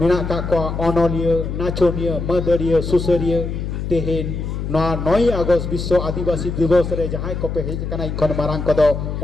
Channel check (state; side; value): noise; left; hum, 4 dB below the sound